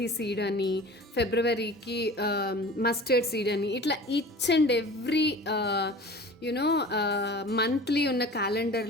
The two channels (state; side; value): normal; both; correlation 0.40